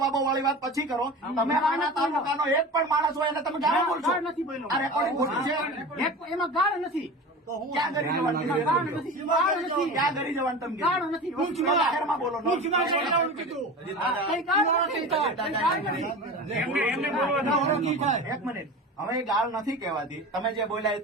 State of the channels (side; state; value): both; normal; correlation 0.32